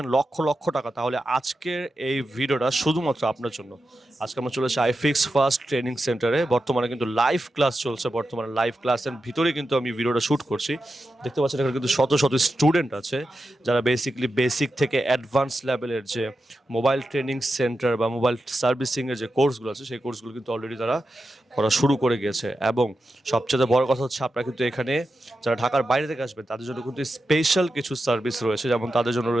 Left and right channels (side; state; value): both; normal; correlation 0.90